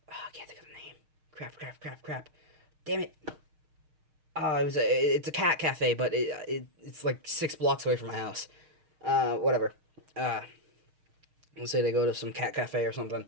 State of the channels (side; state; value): left; late; 6.5 ms